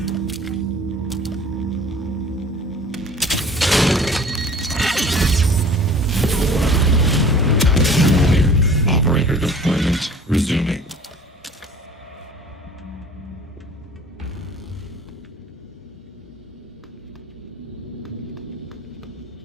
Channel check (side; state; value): both; normal; correlation 0.47